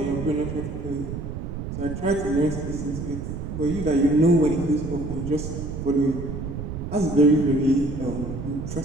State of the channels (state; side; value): noise; right; rumble, 6 dB below the sound